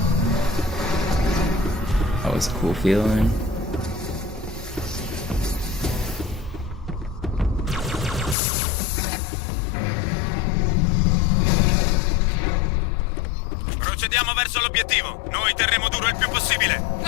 was a cool feeling. Procediamo verso l'obiettivo. Noi terremo duro il più possibile.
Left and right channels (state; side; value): drops out; right; at 8.3 s